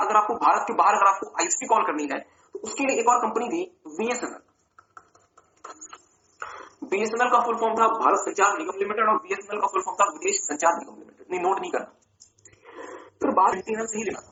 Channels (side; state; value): both; identical; correlation 1.00